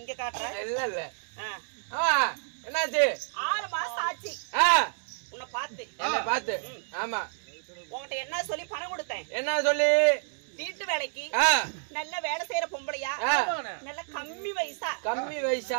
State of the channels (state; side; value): silent; left; digital silence